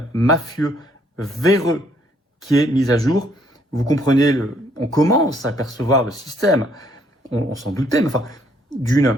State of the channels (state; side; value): normal; both; correlation 0.67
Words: mafieux, véreux, qui est mis à jour. Vous comprenez, on commence à percevoir le système, on s'en doutait, mais enfin,